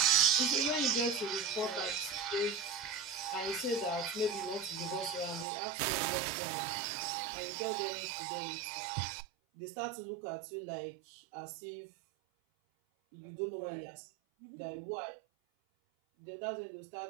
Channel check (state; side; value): drops out; left; at 5.5 s